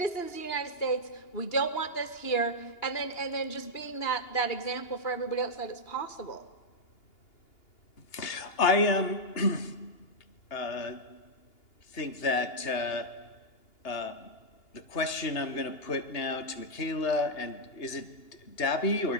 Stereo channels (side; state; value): right; late; 2.8 ms